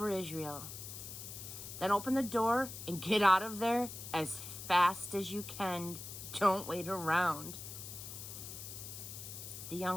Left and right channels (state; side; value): noise; left; hiss, 10 dB below the sound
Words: Israel.' Then open the door and get out of there as fast as you can. Don't wait around." The